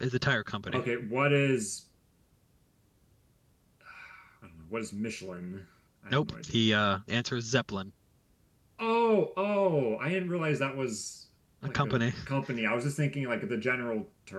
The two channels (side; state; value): both; identical; correlation 1.00